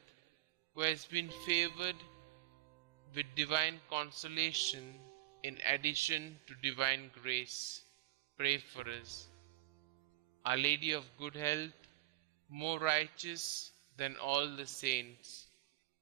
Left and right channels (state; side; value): quieter; left; 16.8 dB